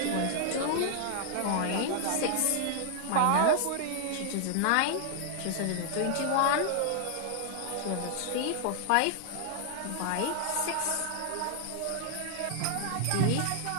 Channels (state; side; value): different; both; correlation -0.01